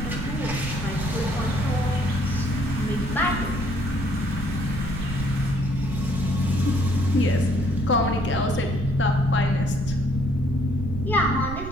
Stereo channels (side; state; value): right; noise; rumble, 8 dB below the sound